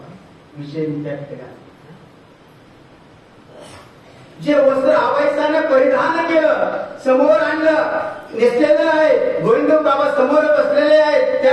विषय त्या ठिकाणी जे वस्त्र आबाईसाने परिधान केलं, समोर आणलं, नेसलेलं आहे, गोविंदबाबा समोर बसलेले आहेत,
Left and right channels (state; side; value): identical; both; correlation 1.00